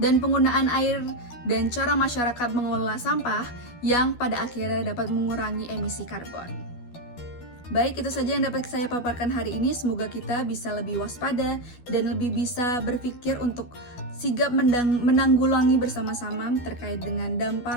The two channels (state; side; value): late; right; 12 ms